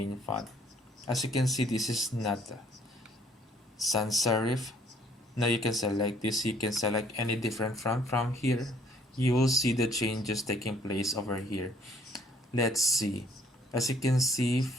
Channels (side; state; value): both; normal; correlation 0.61